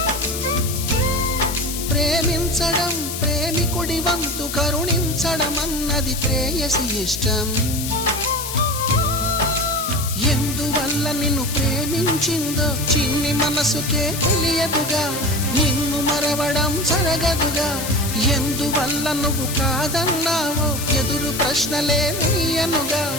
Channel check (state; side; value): noise; left; hiss, 6 dB below the sound